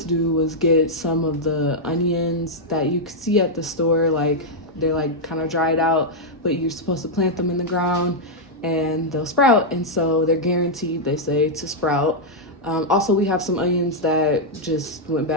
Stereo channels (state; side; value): normal; both; correlation -0.04